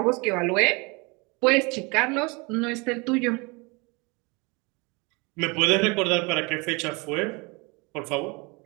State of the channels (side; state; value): left; quieter; 27.9 dB